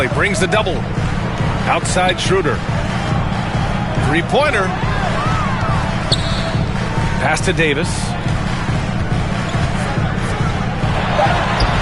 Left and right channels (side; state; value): both; identical; correlation 1.00